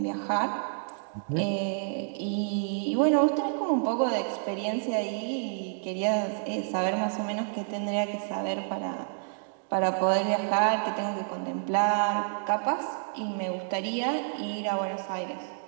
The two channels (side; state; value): left; silent; digital silence